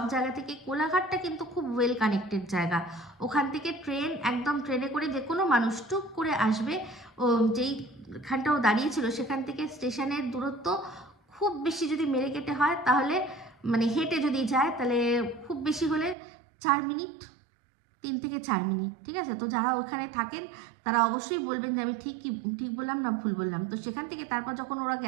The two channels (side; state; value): left; drops out; at 16.2 s